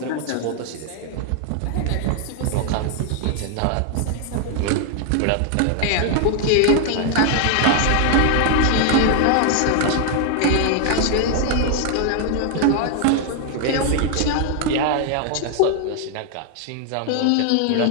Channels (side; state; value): both; different; correlation 0.00